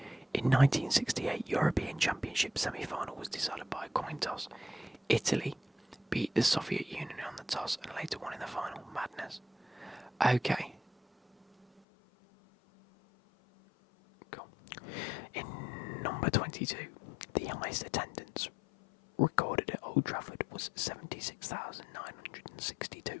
In 1968, European Championship semi-final was decided by a coin toss. Italy beat the Soviet Union on the toss and later won in the final. Madness. Okay. Cool. In number 22, the highest attendance recorded at Old Trafford was 76,962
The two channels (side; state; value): right; drops out; at 11.8 s